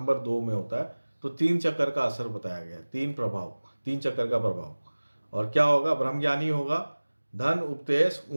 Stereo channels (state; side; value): inverted; both; correlation -1.00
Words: 2 में होता है तो 3 चक्कर का असर बताया गया है, 3 चक्कर का प्रभाव। और क्या होगा, ब्रह्मज्ञानी होगा, धन उपदेश